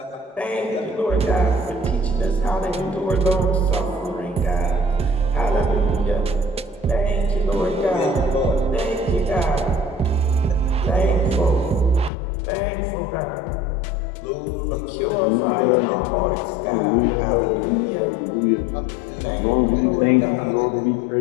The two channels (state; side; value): drops out; right; at 12.1 s